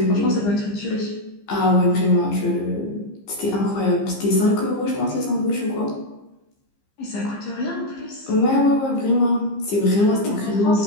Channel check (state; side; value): late; right; 15 ms